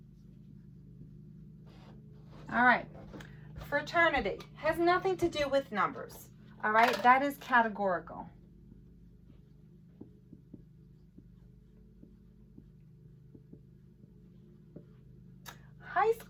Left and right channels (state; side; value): identical; both; correlation 1.00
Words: All right, fraternity has nothing to do with numbers. All right, that is categorical. High